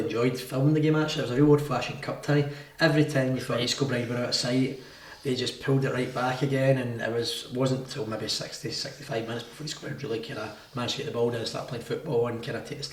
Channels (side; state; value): both; identical; correlation 1.00